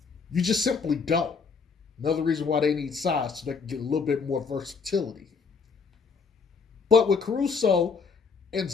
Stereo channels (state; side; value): quieter; right; 5.2 dB